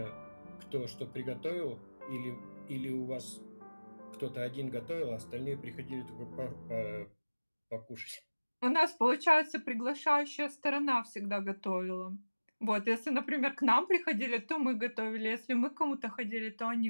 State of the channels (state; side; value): inverted; both; correlation -1.00